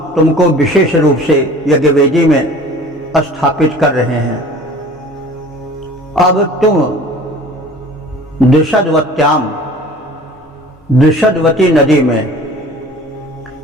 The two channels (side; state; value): both; normal; correlation 0.45